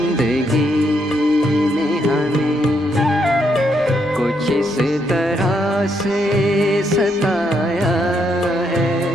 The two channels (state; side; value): normal; both; correlation 0.76